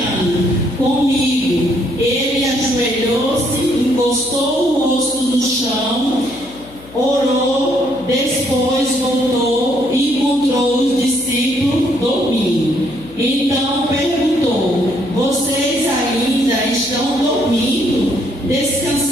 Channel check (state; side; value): noise; left; hum, 21 dB below the sound